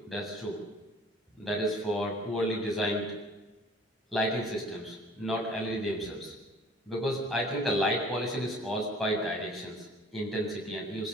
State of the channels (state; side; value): normal; both; correlation 0.51